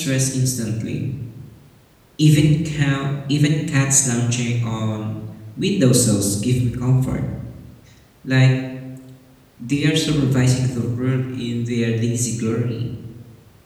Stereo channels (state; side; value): identical; both; correlation 1.00